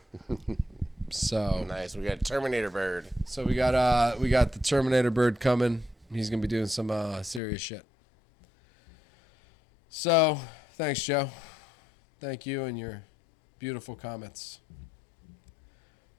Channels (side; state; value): right; drops out; at 7.4 s